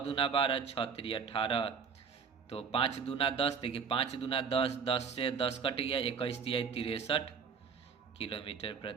12, 6 3 18 तो 5 दूना 10। देखिए 5 दूना 10, 10 से 10 कट गया, 21 तिहाई 63 किलोमीटर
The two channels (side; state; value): left; quieter; 6.1 dB